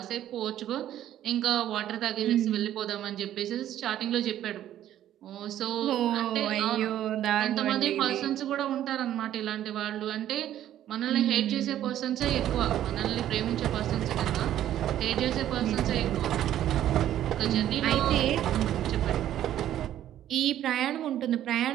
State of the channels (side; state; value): left; quieter; 11.9 dB